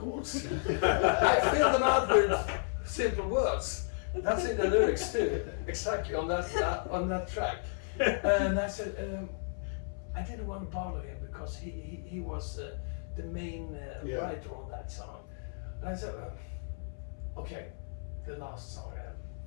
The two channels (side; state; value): right; silent; 56 dB below the other